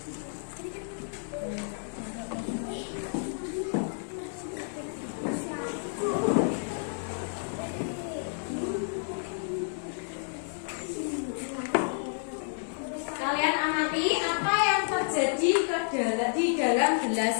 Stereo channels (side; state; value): right; silent; digital silence